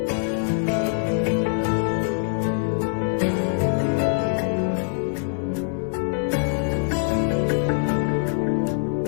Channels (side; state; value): right; silent; digital silence